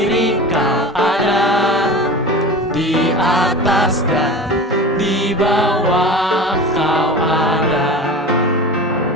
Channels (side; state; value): both; normal; correlation 0.32